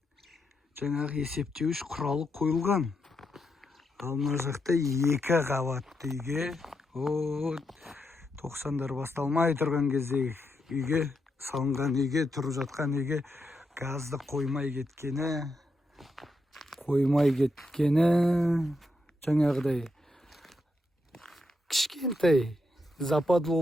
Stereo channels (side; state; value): both; normal; correlation 0.83